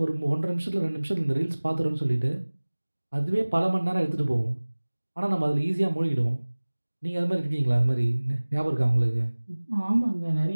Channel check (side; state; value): both; inverted; correlation -1.00